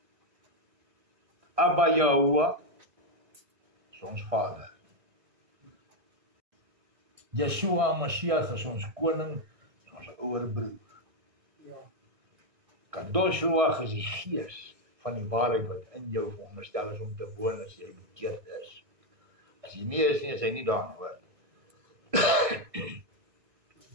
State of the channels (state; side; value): late; left; 1.6 ms